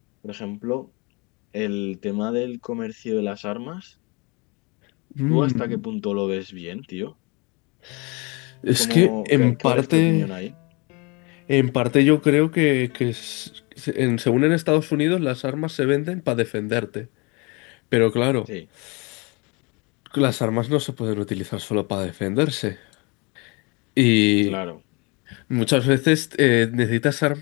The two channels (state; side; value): quieter; right; 29.0 dB